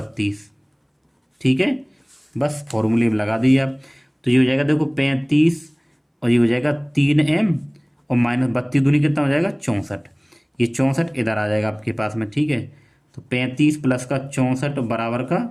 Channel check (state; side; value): identical; both; correlation 1.00